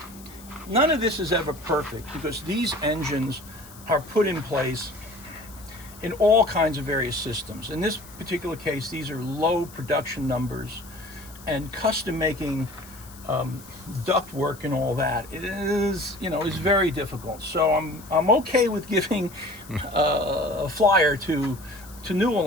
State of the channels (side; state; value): left; noise; hiss, 20 dB below the sound